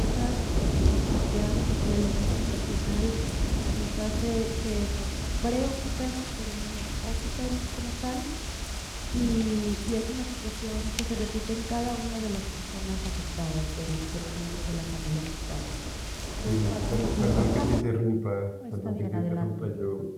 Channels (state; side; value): identical; both; correlation 1.00